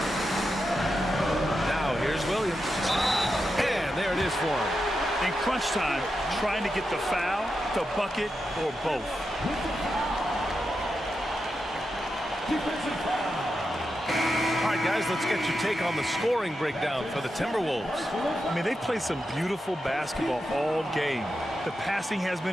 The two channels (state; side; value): normal; both; correlation 0.88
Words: Now here's Williams. And there it is for him. In crunch time, trying to get the foul, the bucket, or both. Defensive foul. All right, guys, let's get your take on the scoring breakdown for the Timberwolves. I mean, they've played some beautiful basketball all game. The passing has